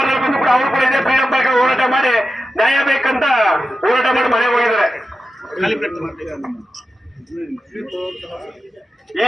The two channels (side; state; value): both; normal; correlation 0.91